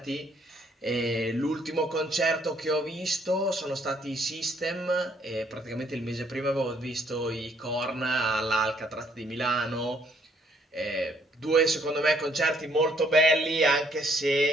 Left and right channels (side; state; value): both; normal; correlation 0.66